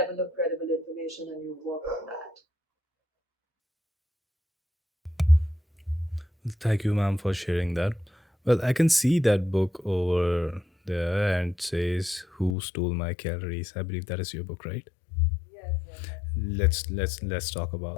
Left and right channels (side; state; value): right; drops out; at 12.6 s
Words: of credible information and you work on that. Thank you, ma'am, for sharing that. Well, I can see that book over there and it says "Who Stole My Calories." I believe that is your book, right? Yes, yes, Let's talk about.